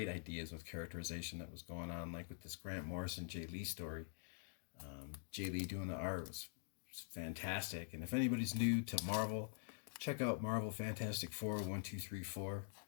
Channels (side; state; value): right; silent; digital silence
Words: ideas with characterization that was going on, like with this Grant Morrison, Jay Lee story. Jay Lee doing the art was fantastic. And if anybody's new to Marvel, check out Marvel Fantastic Four, 1, 2, 3, 4.